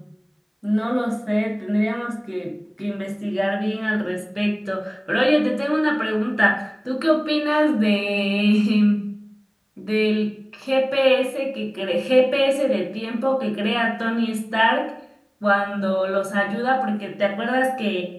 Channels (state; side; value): identical; both; correlation 1.00